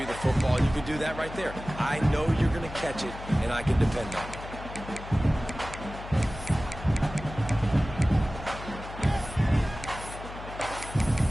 the football. You can do that right there. I know you're going to catch it, and I can depend on it.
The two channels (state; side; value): noise; left; hum, 12 dB below the sound